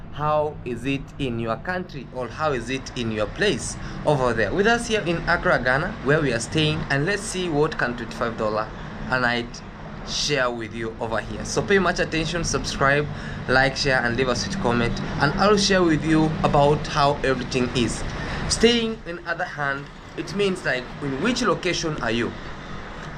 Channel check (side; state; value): both; identical; correlation 1.00